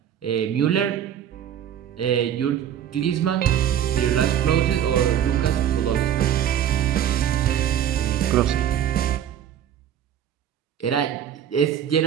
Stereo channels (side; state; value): left; quieter; 9.9 dB